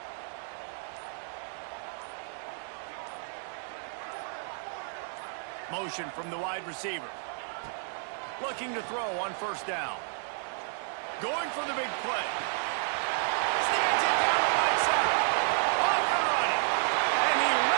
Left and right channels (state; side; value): silent; left; 57 dB below the other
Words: Motion from the wide receiver. Looking to throw on first down. Going for the big play. Snags it down the right side. Off and running. And he